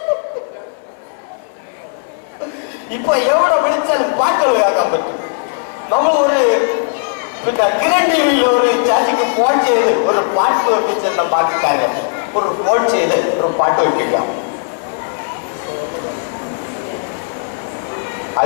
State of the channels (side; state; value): right; silent; 62 dB below the other